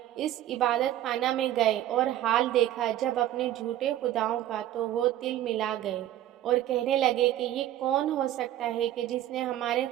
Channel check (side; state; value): left; quieter; 12.9 dB